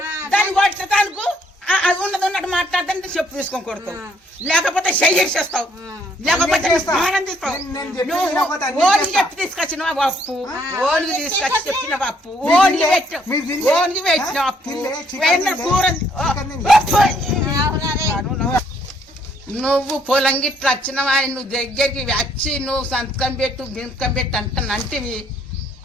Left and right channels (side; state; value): both; normal; correlation 0.68